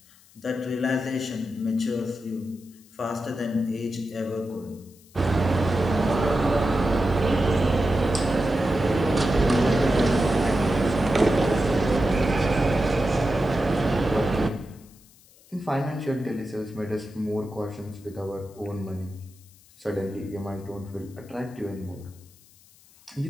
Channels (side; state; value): left; noise; hiss, 27 dB below the sound